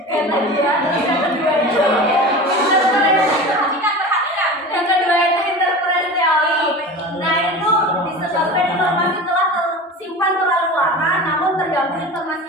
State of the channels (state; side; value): normal; both; correlation 0.32